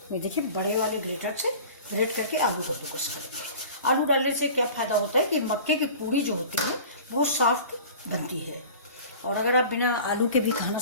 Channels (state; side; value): inverted; both; correlation -0.41